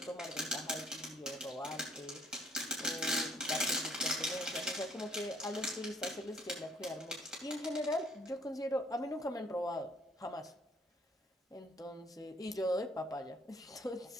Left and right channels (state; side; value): normal; both; correlation 0.63